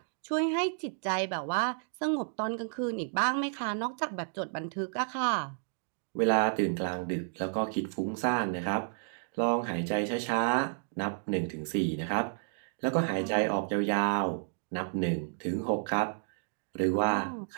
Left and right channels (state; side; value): silent; left; digital silence